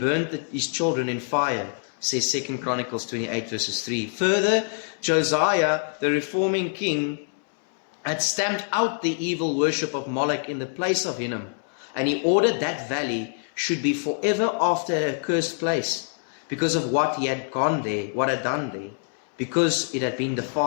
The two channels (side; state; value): right; silent; 62 dB below the other